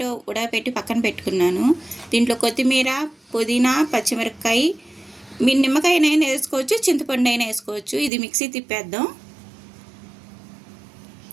ఉడకపెట్టి పక్కన పెట్టుకున్నాను. దీంట్లో కొత్తిమీర, పుదీనా, పచ్చిమిరపకాయ, మీ నిమ్మకాయనైనా వేసుకోవచ్చు, చింతపండు అయినా వేసుకోవచ్చు. ఇది మిక్సీ తిప్పేద్దాం.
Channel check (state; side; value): drops out; left; at 8.1 s